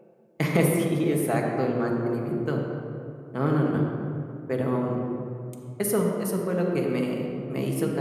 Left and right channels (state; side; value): identical; both; correlation 1.00